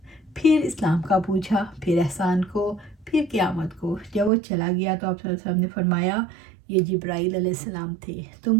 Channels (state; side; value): drops out; left; at 4.3 s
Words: پھر اسلام کا پوچھا، پھر احسان کو، پھر قیامت کو۔ جب وہ چلا گیا تو آپ صلی اللہ علیہ وسلم نے فرمایا، یہ جبرائیل علیہ السلام تھے، تم